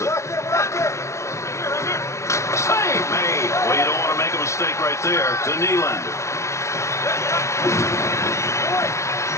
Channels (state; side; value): late; right; 0.14 ms